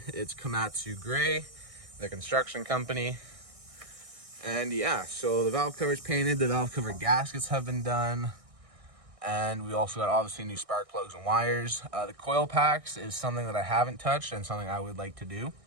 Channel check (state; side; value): late; left; 1.6 ms